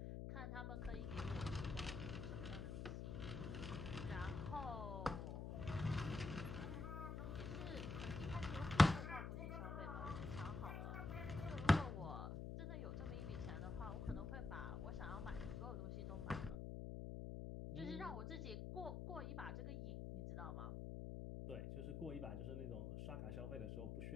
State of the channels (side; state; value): left; noise; hum, 4 dB below the sound